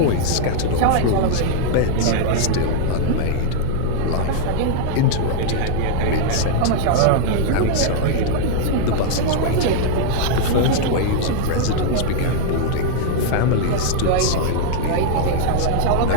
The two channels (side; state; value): both; different; correlation -0.01